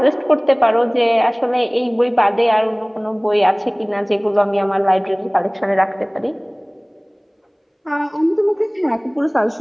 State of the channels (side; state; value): both; identical; correlation 1.00